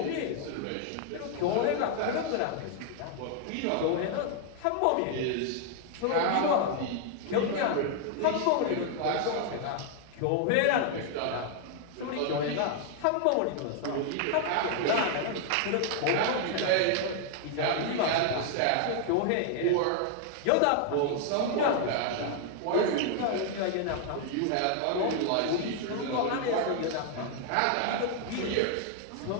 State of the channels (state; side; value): different; both; correlation 0.00